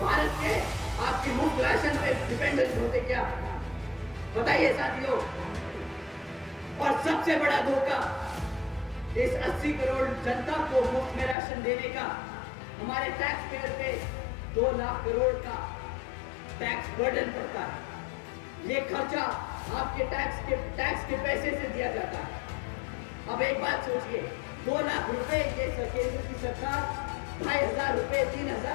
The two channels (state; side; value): drops out; right; at 11.4 s